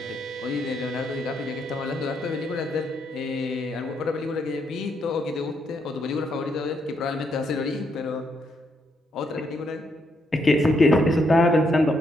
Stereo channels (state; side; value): normal; both; correlation 0.76